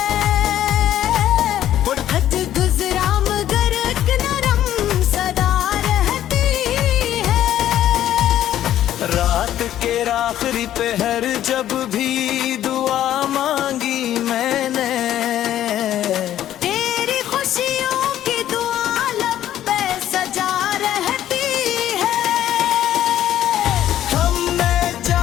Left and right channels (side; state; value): right; quieter; 12.0 dB